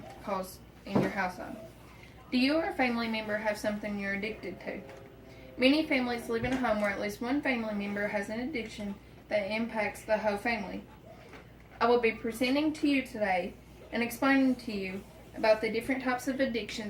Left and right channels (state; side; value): identical; both; correlation 1.00